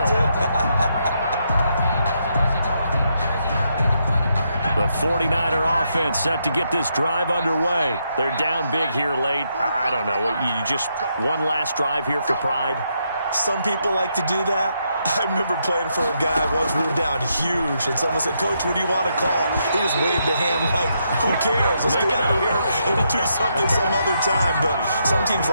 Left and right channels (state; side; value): inverted; both; correlation -0.79